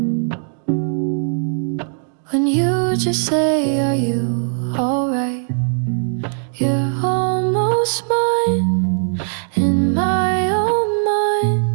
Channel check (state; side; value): silent; left; digital silence